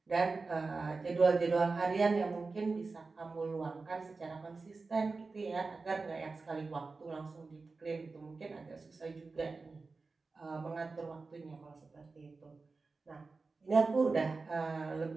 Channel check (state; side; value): quieter; left; 4.0 dB